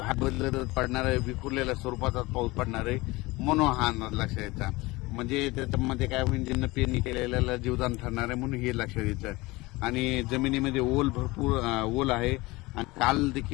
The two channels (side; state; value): right; quieter; 21.8 dB